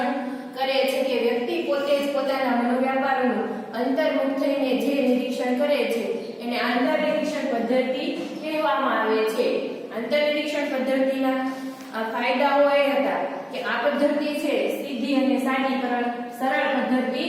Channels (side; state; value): both; identical; correlation 1.00